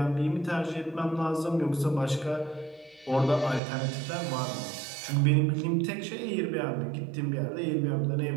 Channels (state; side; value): drops out; left; at 3.6 s